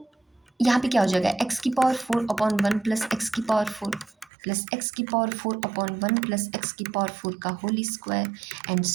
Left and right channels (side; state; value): left; drops out; at 4.3 s